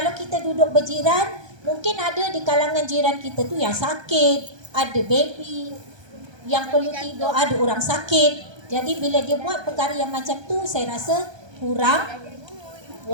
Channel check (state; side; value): late; left; 1.2 ms